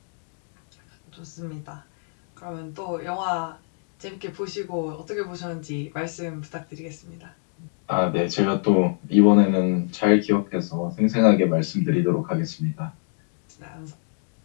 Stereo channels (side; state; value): right; silent; digital silence